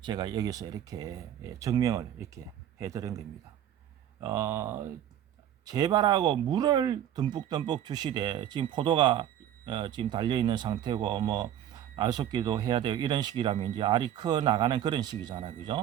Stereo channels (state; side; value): quieter; left; 11.0 dB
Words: 제가 여기서 이렇게 증명을 이렇게 해드린 겁니다. 재발하고 물을 듬뿍듬뿍 주시되 지금 포도가 지금 달려 있는 상태고 뭐 알속기도 해야 되고 이런 시기라면 이제 알이 커 나가는 그런 시기잖아.